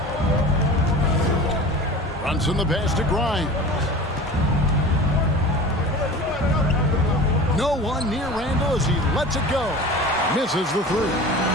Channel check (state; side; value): normal; both; correlation 0.37